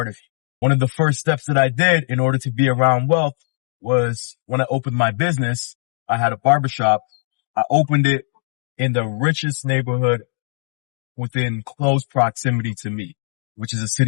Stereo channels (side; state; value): right; silent; digital silence